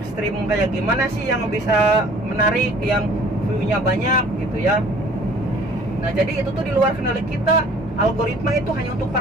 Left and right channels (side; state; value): both; normal; correlation 0.53